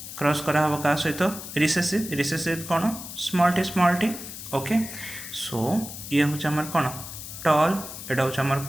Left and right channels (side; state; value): left; noise; hiss, 10 dB below the sound